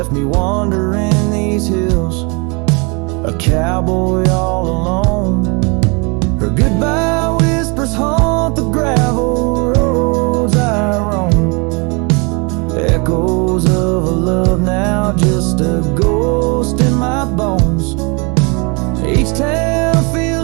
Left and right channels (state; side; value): quieter; left; 31.0 dB